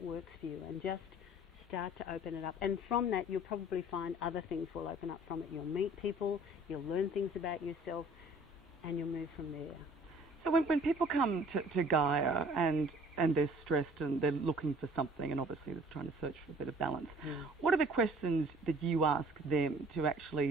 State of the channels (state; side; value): normal; both; correlation 0.53